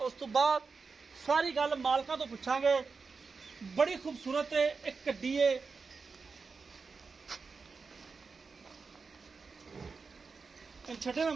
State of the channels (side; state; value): left; quieter; 4.8 dB